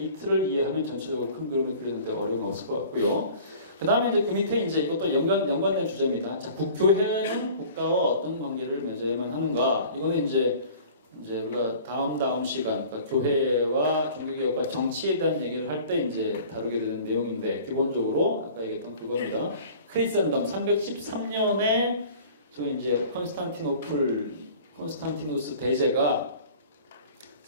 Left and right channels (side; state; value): both; inverted; correlation -0.46